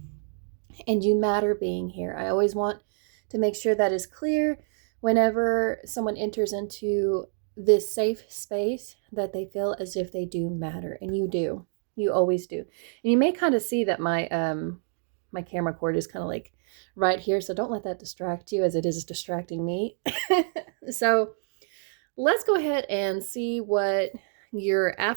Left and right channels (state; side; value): silent; left; 57 dB below the other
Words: and you matter being here. I always want to make sure that is clear whenever someone enters into this safe space, that they feel as if they do matter, and you do. You always do. And you may kind of see that my camera cord is kind of like right here, so don't let that distract you as it is distracting me. So let's go ahead and see what your